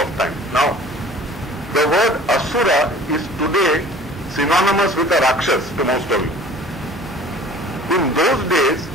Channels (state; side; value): normal; both; correlation 0.46